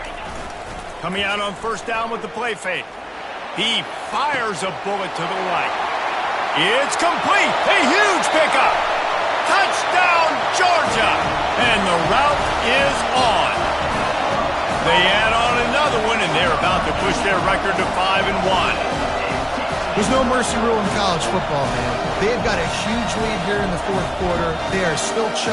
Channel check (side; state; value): both; identical; correlation 1.00